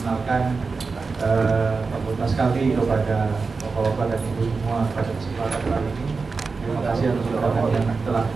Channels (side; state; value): left; quieter; 4.4 dB